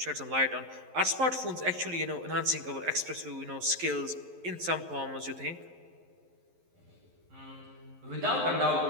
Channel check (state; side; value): late; left; 11 ms